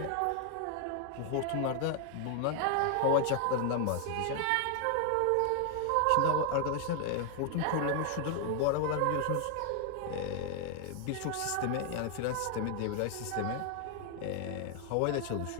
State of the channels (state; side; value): different; both; correlation 0.00